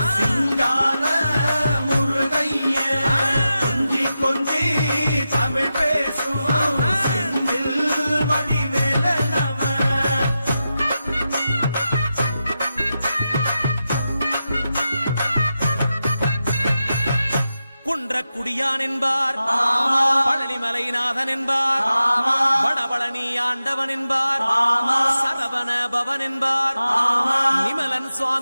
சிங்கார முருகைய, கொஞ்சி கொஞ்சி தமிழ் பேசும் செந்தில் வடிவேலனவ. குன்றக்குடியான் என்பார், பழனிமலைநாதன் என்பார், வடபழனி ஆண்டவன் என்பார், சரவண பவன் என்பார், நிமலன்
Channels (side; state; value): both; inverted; correlation -0.90